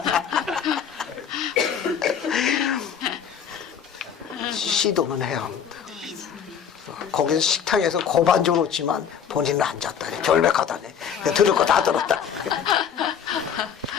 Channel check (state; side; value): quieter; right; 7.7 dB